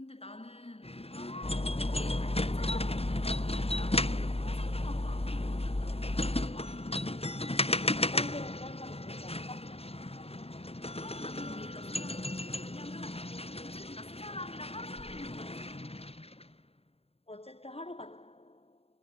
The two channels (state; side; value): late; right; 0.29 ms